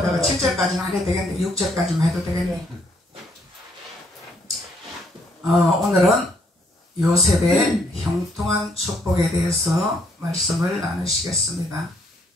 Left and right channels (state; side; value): normal; both; correlation 0.69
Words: 7절까지는 안 해도 되겠네. 6절까지만 해도 되겠네. 오늘은 요셉의 형통한 축복에 대해서 말씀을 나누시겠습니다.